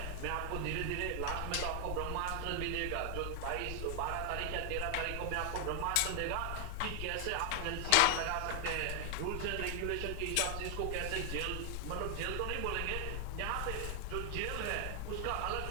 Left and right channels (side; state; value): both; different; correlation 0.00